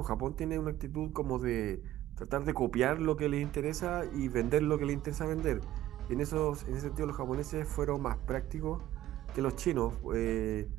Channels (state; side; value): quieter; left; 13.9 dB